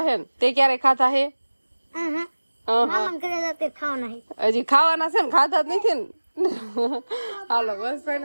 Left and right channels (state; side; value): inverted; both; correlation -1.00